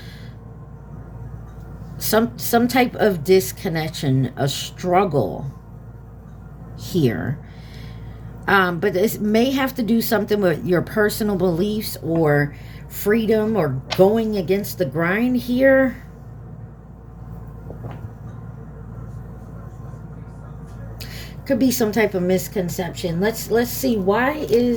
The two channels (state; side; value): identical; both; correlation 1.00